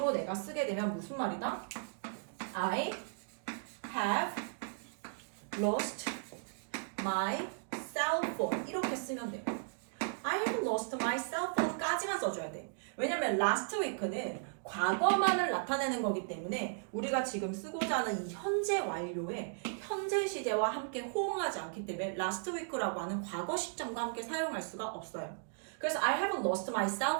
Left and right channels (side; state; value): left; silent; digital silence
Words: 내가 쓰게 되면 무슨 말이다? I have lost my cell phone 이렇게 쓰면 돼요. I have lost my cell phone 까지만 써줘야 돼. 왜냐면 last week는 과거만을 나타내는 거기 때문에 우리가 지금 쓰고자 하는 이 현재 완료에 현재 시제와 함께 호응하지 않기 때문에 last week라고 하는 과거 시점과 함께 사용할 수가 없어요. 그래서 I haven't lost my cell